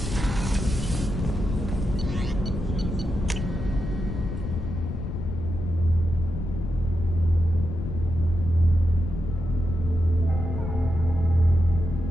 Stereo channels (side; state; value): left; noise; rumble, 5 dB below the sound